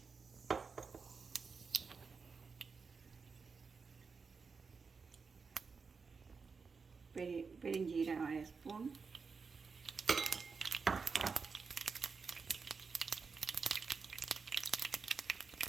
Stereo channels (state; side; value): quieter; left; 5.1 dB